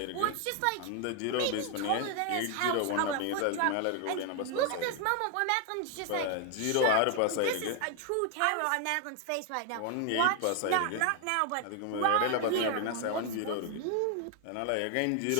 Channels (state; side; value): different; both; correlation 0.01